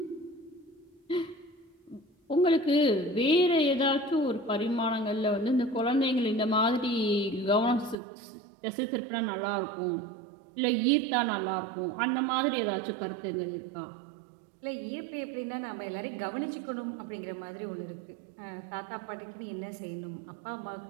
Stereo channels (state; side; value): drops out; left; at 8.0 s